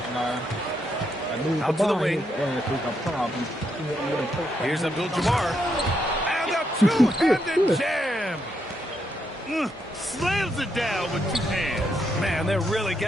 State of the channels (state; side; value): normal; both; correlation 0.79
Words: Out to the wing. Here's Abdul-Jabbar. And a two-handed jam. Slams it down with two hands. Man, they're really